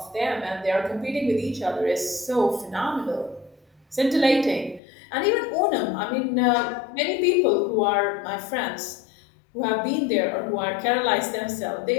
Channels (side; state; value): right; drops out; at 4.8 s